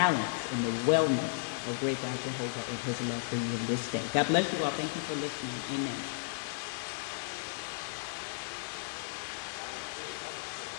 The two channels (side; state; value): right; silent; digital silence